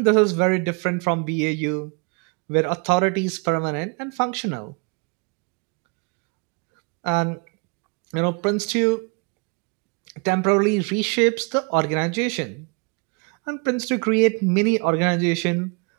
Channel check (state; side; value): quieter; left; 34.1 dB